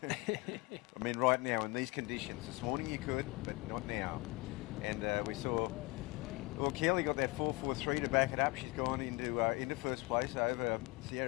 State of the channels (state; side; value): quieter; right; 24.1 dB